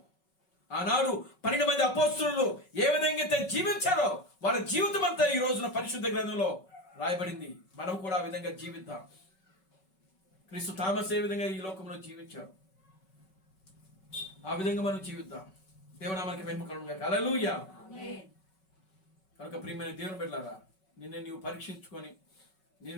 ఆనాడు 12 మంది అపోస్తలులు ఏ విధంగా అయితే జీవించారో వాళ్ళ జీవితం అంతా ఈ రోజున పరిశుద్ధ గ్రంథంలో రాయబడింది. మనం కూడా ఆ విధంగా జీవిద్దాం. క్రీస్తు థామస్ ఏ విధంగా ఈ లోకంలో జీవించారు ఆ విధంగా మనం జీవిద్దాం. దేవునామానికి మహిమ కలుగును గాక. హల్లెలూయా. కనుక ప్రియమైన దేవుని బిడ్డలారా నిన్ను నీవు పరీక్షించుకొని,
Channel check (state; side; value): late; right; 5.3 ms